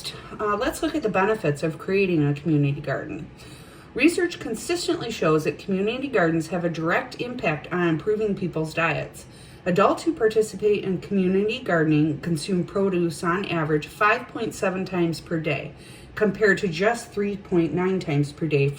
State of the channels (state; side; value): identical; both; correlation 1.00